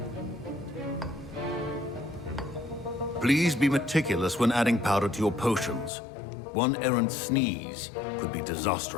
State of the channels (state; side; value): drops out; right; at 5.9 s